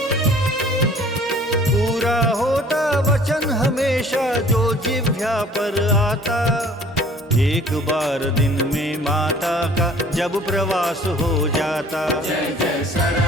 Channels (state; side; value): normal; both; correlation 0.53